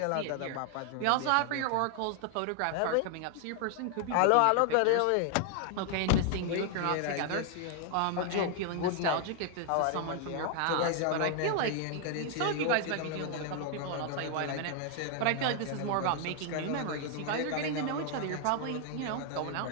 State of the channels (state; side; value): different; both; correlation 0.00